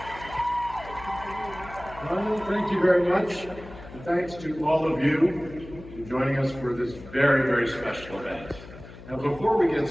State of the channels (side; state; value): left; noise; hum, 16 dB below the sound